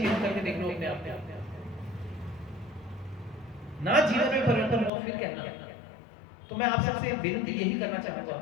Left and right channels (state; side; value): drops out; right; at 4.9 s